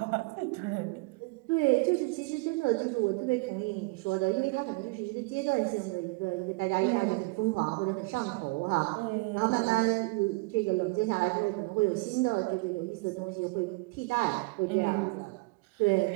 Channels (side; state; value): left; quieter; 26.6 dB